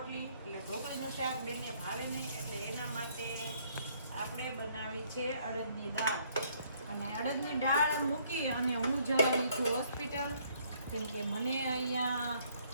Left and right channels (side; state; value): both; inverted; correlation -0.65